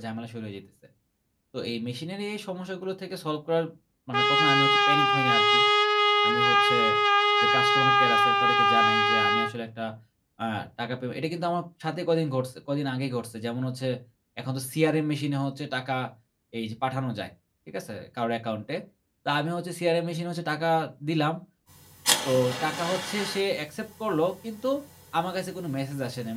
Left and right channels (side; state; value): both; identical; correlation 1.00